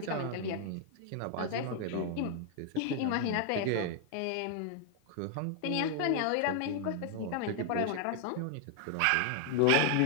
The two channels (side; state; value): both; different; correlation 0.00